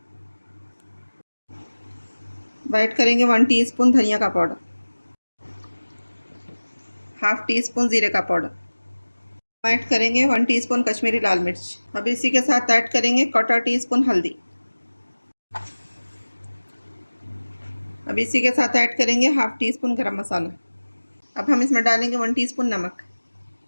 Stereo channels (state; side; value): inverted; both; correlation -1.00